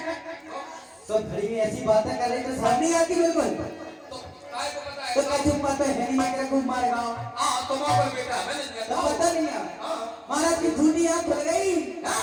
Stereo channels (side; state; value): both; identical; correlation 1.00